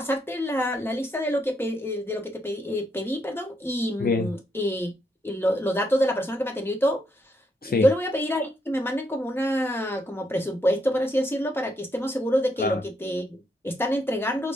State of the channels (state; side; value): normal; both; correlation 0.77